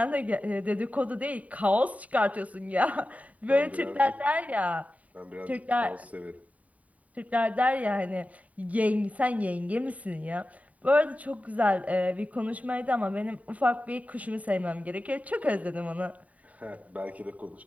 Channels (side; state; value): left; late; 0.070 ms